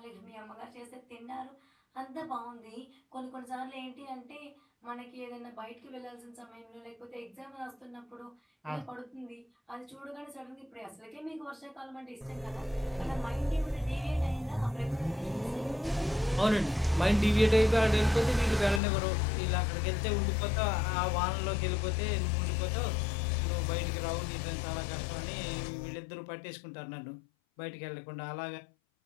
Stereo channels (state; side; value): drops out; right; at 18.8 s